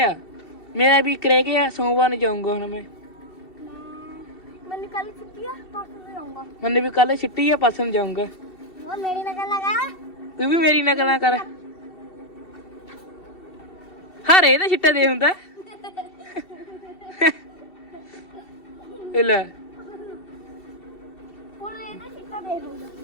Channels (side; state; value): right; late; 2.7 ms